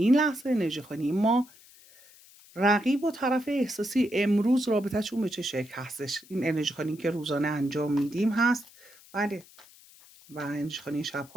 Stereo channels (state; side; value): noise; left; hiss, 24 dB below the sound